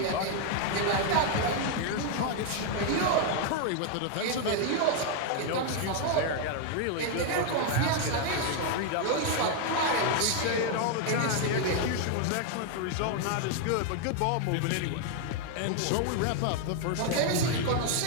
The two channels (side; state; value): both; different; correlation 0.00